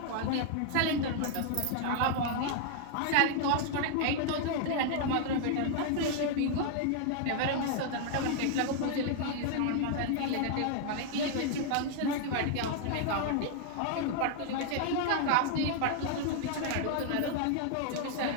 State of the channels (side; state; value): both; different; correlation 0.00